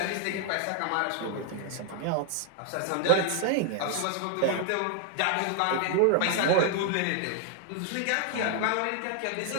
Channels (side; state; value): both; different; correlation 0.00